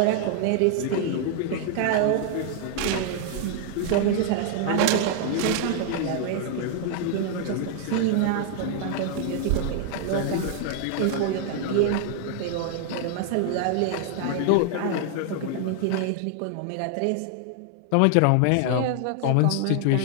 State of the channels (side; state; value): both; different; correlation 0.00